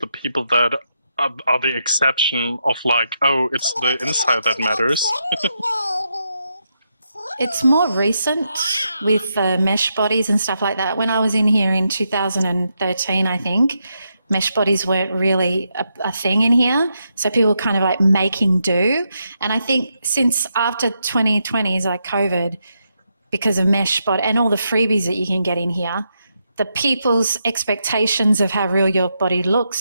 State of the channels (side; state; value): both; inverted; correlation -0.82